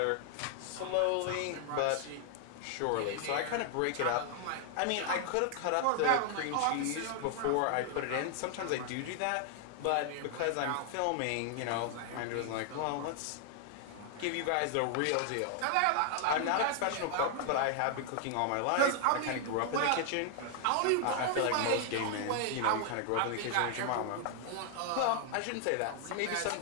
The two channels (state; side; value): different; both; correlation 0.00